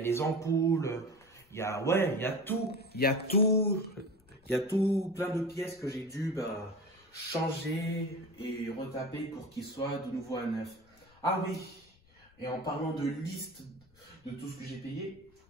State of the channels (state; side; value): noise; left; rumble, 30 dB below the sound